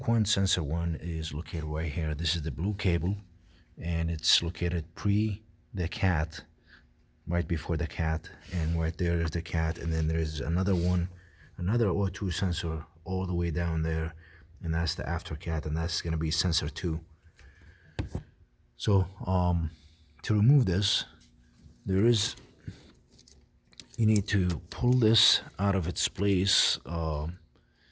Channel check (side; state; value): both; identical; correlation 1.00